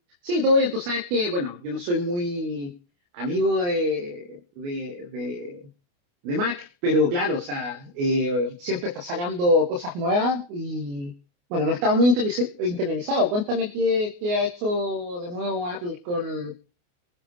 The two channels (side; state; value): left; late; 29 ms